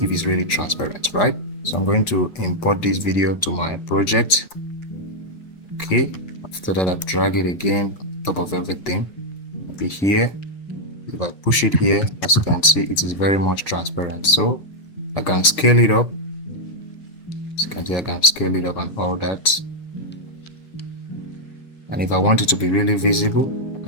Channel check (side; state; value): right; late; 6.4 ms